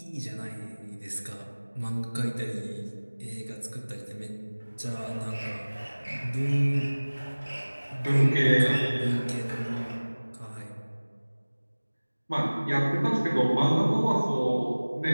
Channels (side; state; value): both; inverted; correlation -1.00